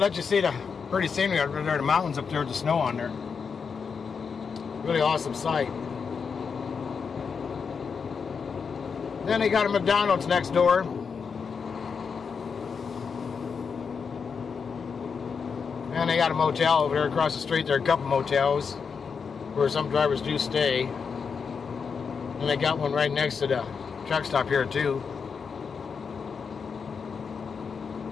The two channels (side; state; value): right; quieter; 5.9 dB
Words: you see the pretty scenery out there, the mountains up there with the snow on there. Really awesome sight. Then they got a McDonald's next door. And they got a motel over there across the street. There are a couple motels where some drivers do stay. And they got one right next to the truck stop here too.